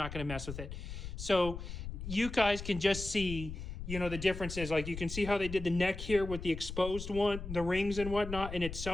going to mess with it. So you guys can just see, you know, the differences. Like, you can see how they did the neck here with the exposed one, the rings and whatnot, and it's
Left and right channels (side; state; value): left; noise; rumble, 8 dB below the sound